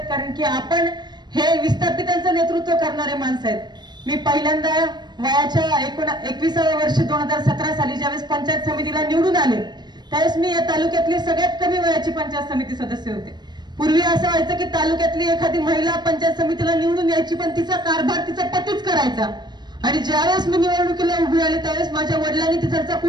की आपण हे विस्थापितांचं नेतृत्व करणारे माणसं आहेत। मी पहिल्यांदा वयाच्या 21व्या वर्षी 2017 साली ज्यावेळेस पंचायत समितीला निवडून आले त्यावेळेस मी या तालुक्यातली सगळ्यात कमी वयाची पंचायत समिती सदस्य होते। पूर्वी असं व्हायचं की तालुक्यातली एखादी महिला पंचायत समितीला निवडून यायची पण तिचा कारभार तिचा पतीच करायचा आणि ज्यावेळेस मी निवडणुकीला उभी आले त्यावेळेस माझ्या वडिलांनी तिचा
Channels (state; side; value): late; left; 0.21 ms